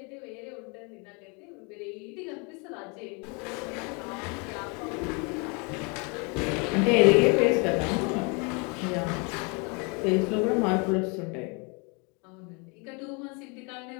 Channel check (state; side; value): quieter; right; 32.4 dB